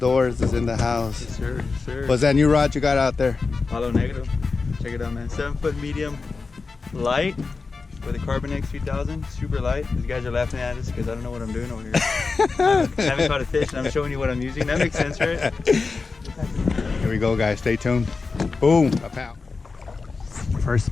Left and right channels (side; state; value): right; quieter; 4.3 dB